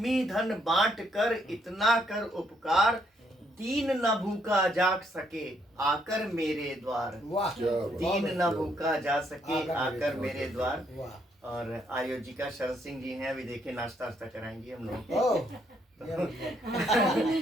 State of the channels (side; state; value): both; normal; correlation 0.72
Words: धन बांट कर इतना कर उपकार, दीन न भूखा जा सके आकर मेरे द्वार, दीन न भूखा जा सके आकर मेरे द्वार। और आयोजिका शरद सिंह जी हैं, अभी देखिए नाश्ता वास्ता कराएंगी हम लोग।